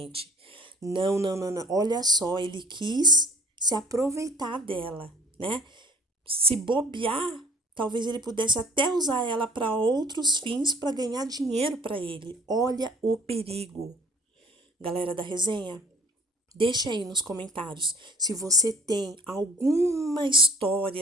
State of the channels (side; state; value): both; normal; correlation 0.53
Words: Não, não, não, não. Olha só, ele quis se aproveitar dela, né? Se bobear, talvez ele pudesse até usar ela para outros fins para ganhar dinheiro para ele. Olha o perigo. Galera da resenha, deixa aí nos comentários se você tem alguma